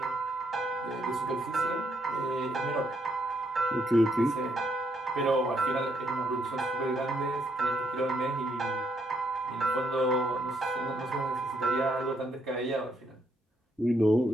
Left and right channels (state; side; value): normal; both; correlation 0.74